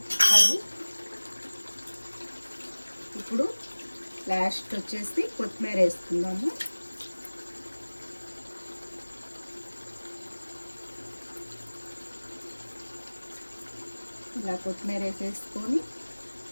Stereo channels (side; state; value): both; inverted; correlation -1.00